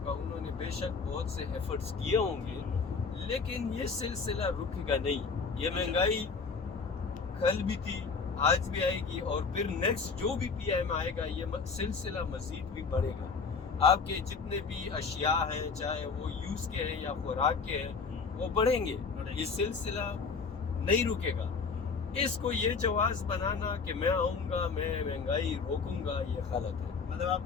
کا، انہوں نے بے شک بہت سے ایفرٹس کیے ہوں گے، لیکن یہ سلسلہ رکے گا نہیں. یہ مہنگائی کل بھی تھی، آج بھی آئے گی، اور پھر نیکسٹ جو بھی پی ایم آئے گا یہ سلسلہ مزید بھی بڑھے گا. آپ کے جتنے بھی اشیاء ہیں، چاہے وہ یوز کے ہیں یا خوراک کے ہیں، وہ بڑھیں گے. یہ سلسلہ نہیں رکے گا. اس کو یہ جواز بنانا کہ میں آؤں گا، میں مہنگائی روکوں گا، یہ غلط ہے. مطلب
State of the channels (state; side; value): quieter; right; 5.0 dB